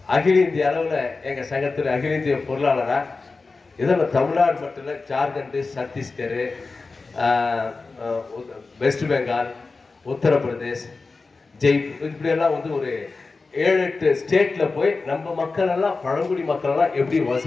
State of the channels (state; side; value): quieter; right; 4.0 dB